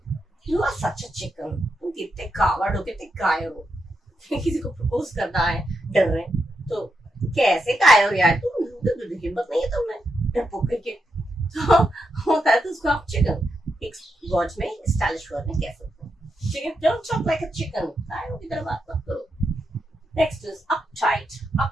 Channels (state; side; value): normal; both; correlation 0.84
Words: You are such a chicken। तुम कितने कावर्ड हो, कितने कायर हो। किसी को प्रपोज करना है, डर रहे तो कैसे कायर हो यार तुम, हिम्मत नहीं है तुम्हें डरपोक करके। तो होता है तो उसको आप चिकन एक वर्ड में, स्टाइलिश वर्ड में कह सकते हैं। ठीक है, don't talk like a chicken, कायरों की तरह बात मत करो। Next is uptight.